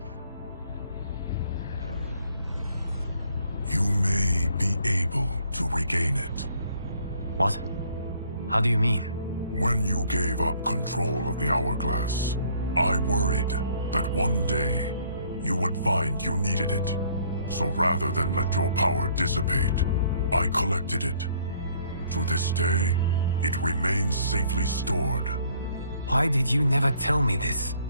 You may be able to regain it. What? How do you mean? When you gave up control of the Hourglass, I worried that one day you would find you needed it. So rather than let your power dissipate, I collected it. To this day, it remains safely stored. Why did you never tell me this?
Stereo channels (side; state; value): both; inverted; correlation -0.62